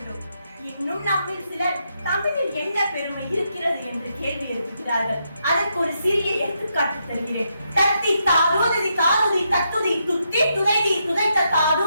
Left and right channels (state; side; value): inverted; both; correlation -0.81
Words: இன்னும் நம்மில் சிலர் தமிழில் என்ன பெருமை இருக்கிறது என்று கேள்வி எழுப்புகிறார்கள். அதற்கு ஒரு சிறிய எடுத்துக்காட்டு தருகிறேன். தத்தி தாரூதி தாருதி தத்துதி துத்தி துதைதி துதைத்த